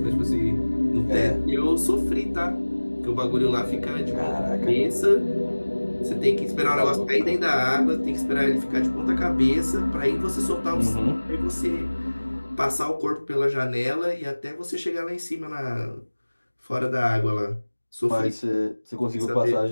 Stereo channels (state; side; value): inverted; both; correlation -1.00